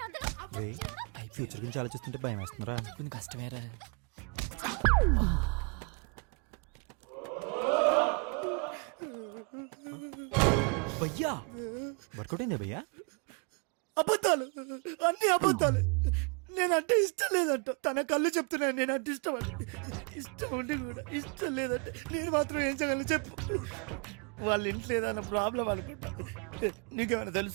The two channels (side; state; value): left; quieter; 34.6 dB